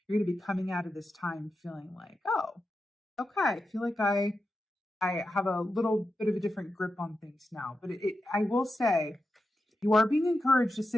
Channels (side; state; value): both; normal; correlation 0.89